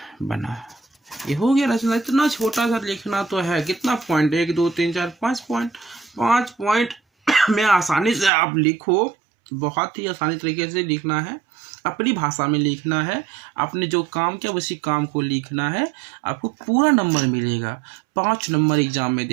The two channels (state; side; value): drops out; left; at 8.3 s